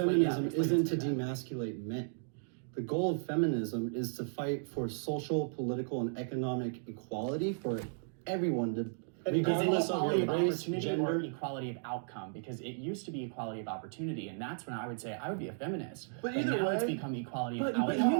feminism explain isn't to that. demasculate men. The goal of feminism is to fight for social, political, and economic equality for everyone, regardless of equality your of race, opportunity or gender. equality of outcome, because it used to be equality of opportunity, and that's when I would say I would be a feminist. But either now way- it's become equality But, of but,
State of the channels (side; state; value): left; silent; digital silence